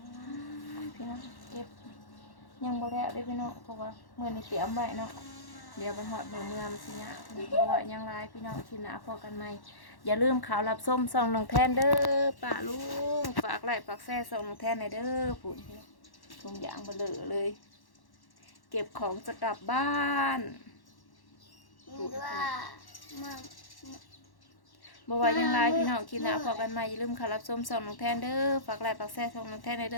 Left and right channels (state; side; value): late; right; 1.1 ms